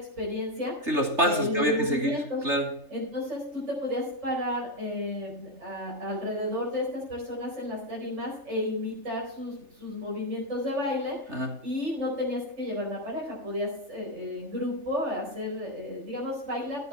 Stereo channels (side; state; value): left; late; 3.3 ms